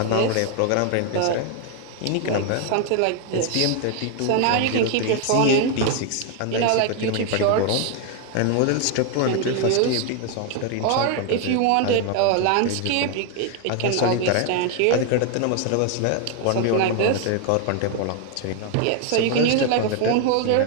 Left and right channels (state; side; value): different; both; correlation 0.01